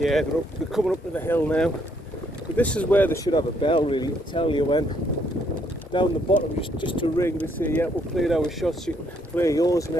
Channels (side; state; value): both; normal; correlation 0.70